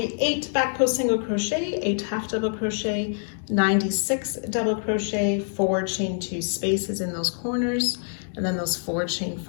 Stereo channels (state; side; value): silent; right; 61 dB below the other